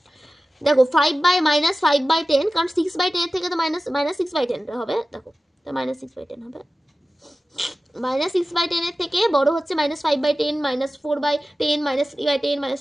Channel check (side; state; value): both; normal; correlation 0.95